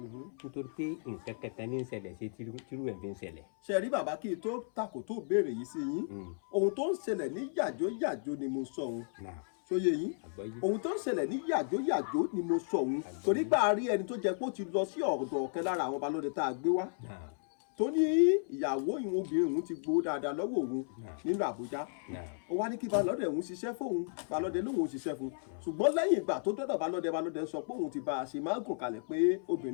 pé nǹkan kẹta ní ń ṣẹlẹ̀ sí tírú ẹ̀ fi ń ṣẹlẹ̀. ṣe rí bàbá kí n tó takò tó béèrè yìí sí yín ohun tó ń ṣẹlẹ̀ ní yàjóyàjó ni mo sọ òun sóye yín ohun tó ń ṣẹlẹ̀ ní yàjóyàjó ni mo sọ òun torí gbà á rí ẹni tó jẹ́ pé ó ti lọ sí ọ̀dọ̀ ọ̀kan lára àwọn balọ̀dẹ tá a gbé wá tó ní ìyàwó ìwọ̀n obìnrin òun ti gbowó dáadáa lọ́wọ́ òun nínú Àbújá ó wá ní kí balọ̀dẹ òun ṣiṣẹ́ fóun balọ̀dẹ lóun ò ṣiṣẹ́ fún ṣùgbọ́n lẹ́yìn ìgbà tó dọ́dọ̀ balọ̀dẹ sọ pé òun ti bá a ṣe máa ń gùn kalẹ̀ pé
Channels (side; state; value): right; silent; 55 dB below the other